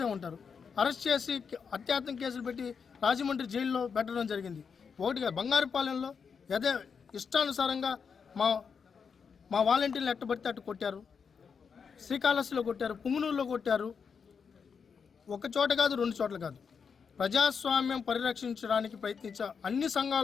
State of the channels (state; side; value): quieter; right; 6.1 dB